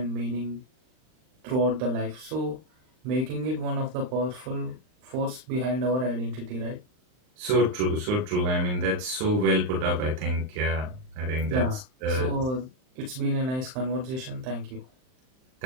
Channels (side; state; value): left; late; 39 ms